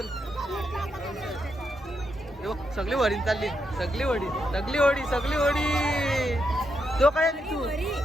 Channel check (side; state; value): both; normal; correlation 0.82